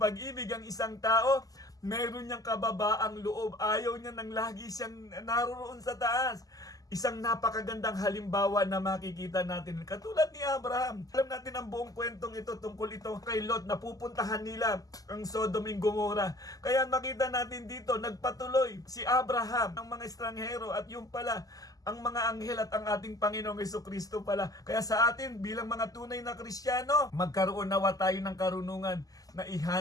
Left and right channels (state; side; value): late; right; 0.17 ms